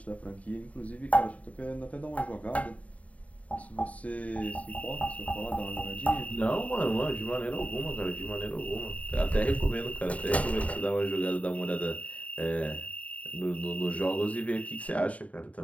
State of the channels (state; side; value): late; right; 0.068 ms